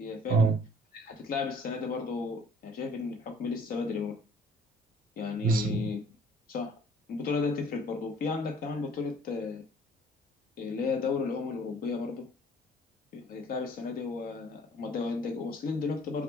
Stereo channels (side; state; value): both; normal; correlation 0.55